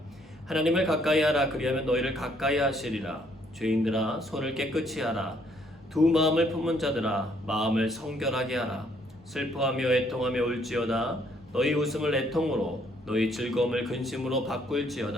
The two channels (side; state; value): both; normal; correlation 0.67